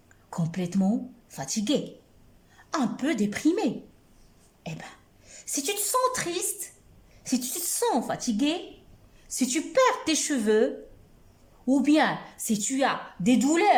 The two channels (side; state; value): both; identical; correlation 1.00